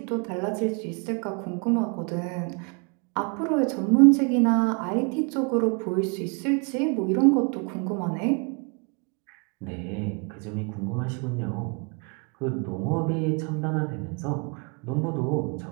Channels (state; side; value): quieter; left; 35.0 dB